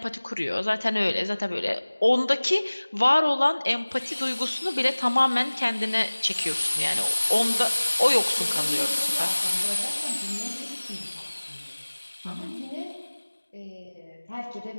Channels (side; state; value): both; inverted; correlation -1.00